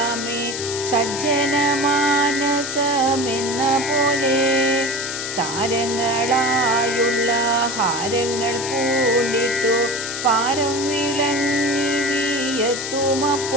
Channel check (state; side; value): noise; left; hiss, 6 dB below the sound